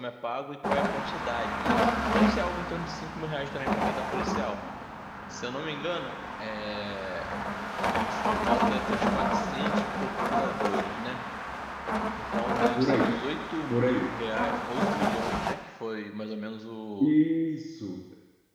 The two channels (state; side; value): identical; both; correlation 1.00